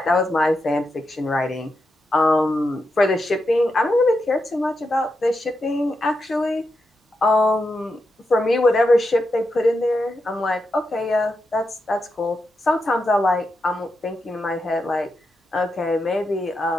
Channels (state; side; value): normal; both; correlation 0.86